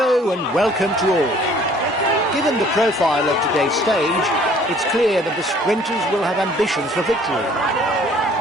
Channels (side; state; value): both; normal; correlation 0.56